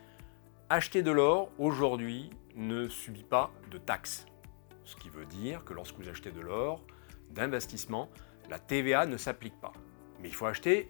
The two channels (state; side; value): silent; right; 53 dB below the other